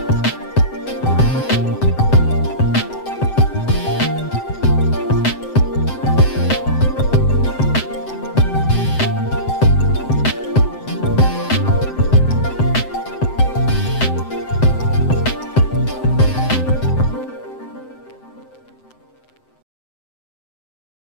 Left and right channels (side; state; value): right; late; 7.8 ms